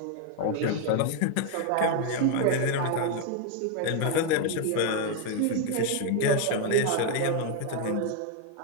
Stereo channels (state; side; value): different; both; correlation 0.01